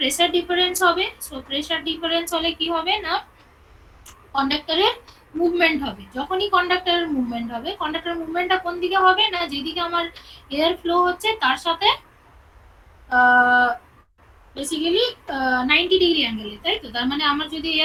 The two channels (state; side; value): identical; both; correlation 1.00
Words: ডিফারেন্স হবে। সো প্রেসার ডিফারেন্স হলে কি হবে না কন্ডাক্টরের মুভমেন্ট হবে। যখনই কন্ডাক্টরের মুভমেন্ট হবে, কন্ডাক্টরের মুভমেন্টটা কোন দিকে হবে না যেদিকে আমার এয়ার ফ্লো হচ্ছে তার সাথে বেসিক্যালি 90 ডিগ্রি অ্যাঙ্গেলে, তাই তো? তার মানে আমার যদি